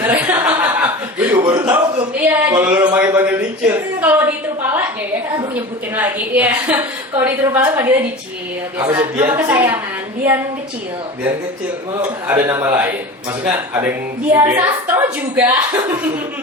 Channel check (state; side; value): normal; both; correlation 0.33